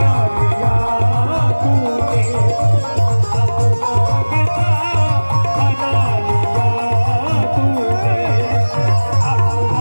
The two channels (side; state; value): both; inverted; correlation -1.00